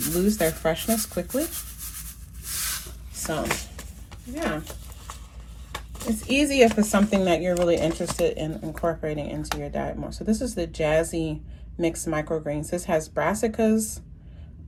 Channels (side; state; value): both; identical; correlation 1.00